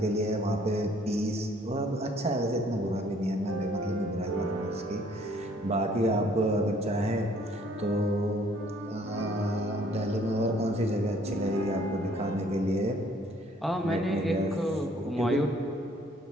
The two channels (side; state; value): both; normal; correlation 0.60